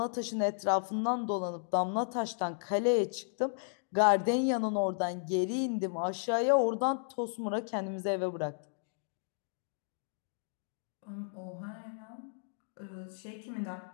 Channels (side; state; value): right; silent; digital silence